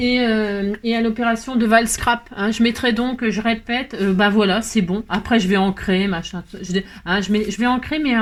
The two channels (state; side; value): identical; both; correlation 1.00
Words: à l'opération de Val Scrap. Hein. Je mettrai donc, je répète, bah voilà, c'est bon. Après, je vais ancrer, machin. Je vais ancrer, mais